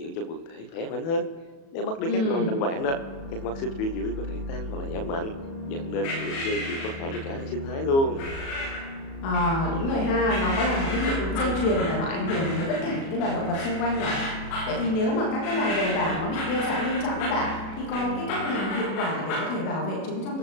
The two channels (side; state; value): right; late; 37 ms